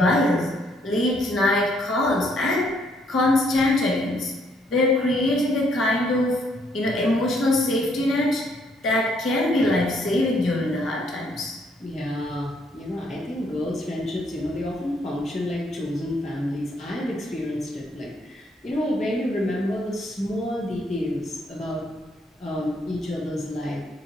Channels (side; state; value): both; normal; correlation 0.69